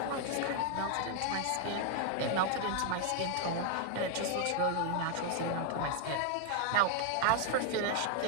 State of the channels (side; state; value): both; different; correlation 0.00